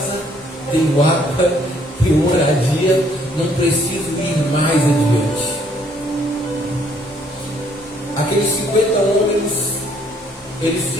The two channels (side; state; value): both; normal; correlation 0.65